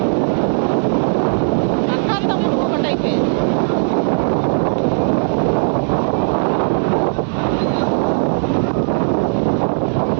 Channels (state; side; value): silent; left; digital silence